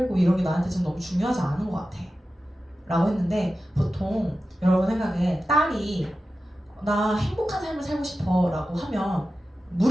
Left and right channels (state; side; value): normal; both; correlation 0.93